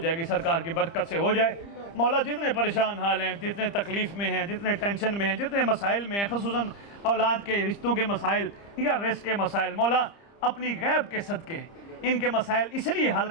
گی, سرکار کی برکت سے ہو جائے. مولا جتنے پریشان حال ہیں, جتنے تکلیف میں ہیں, جتنے ٹینشن میں ہیں, جتنے مسائل میں ہیں, خصوصاً اولاد کے رشتوں کے مسائل یا رزق کے مسائل, مولا اپنی غیب کے صدقے ان کے مسائل اس لیے حل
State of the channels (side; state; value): right; late; 30 ms